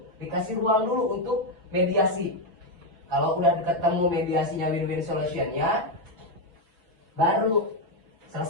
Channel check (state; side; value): late; left; 6.0 ms